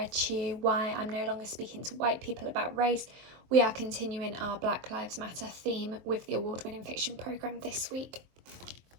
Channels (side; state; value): left; late; 23 ms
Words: to you Why I'm No Longer Speaking to White People About Race, we are continuing our Black Lives Matter theme with the award-winning fiction programme this week.